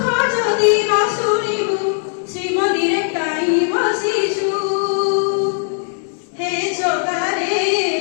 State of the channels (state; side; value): silent; right; 66 dB below the other